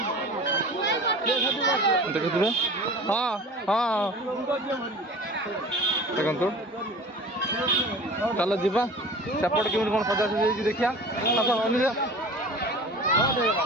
ଦେଖୁଥିବେ ହଁ ହଁ ଦେଖନ୍ତୁ ଚାଲ ଯିବା ସେପଟେ କେମିତି କ'ଣ ସଜାସଜି ହେଇଛି ଦେଖିବା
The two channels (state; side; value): normal; both; correlation 0.39